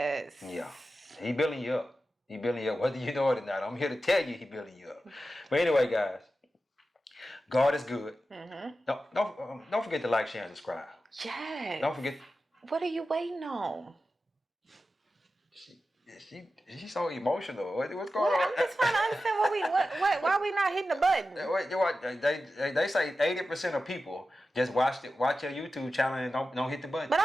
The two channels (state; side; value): normal; both; correlation 0.92